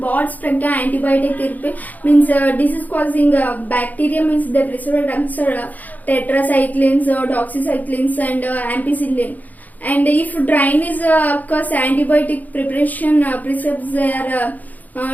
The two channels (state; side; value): late; right; 0.080 ms